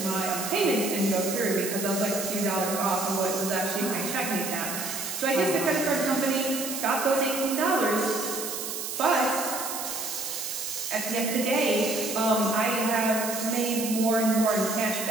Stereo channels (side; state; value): right; noise; hiss, 5 dB below the sound